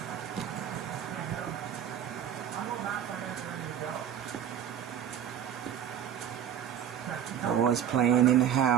Boys playing in the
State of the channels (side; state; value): left; quieter; 9.5 dB